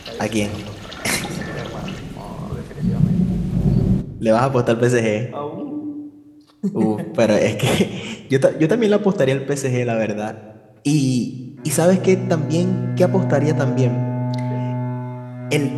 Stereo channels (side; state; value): both; identical; correlation 1.00